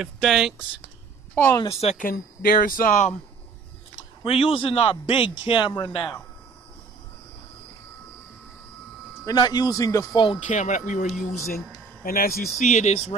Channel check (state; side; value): quieter; left; 4.8 dB